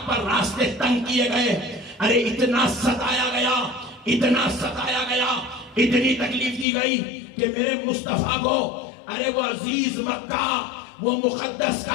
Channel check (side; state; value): right; drops out; at 6.7 s